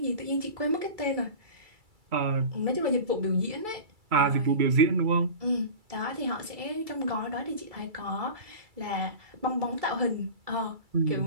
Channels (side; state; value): left; late; 2.3 ms